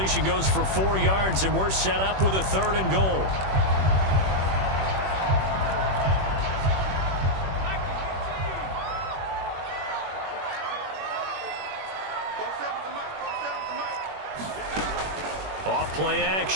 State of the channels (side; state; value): left; late; 21 ms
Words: goes for 4 yards, and we're set up with a 3rd and goal. Off play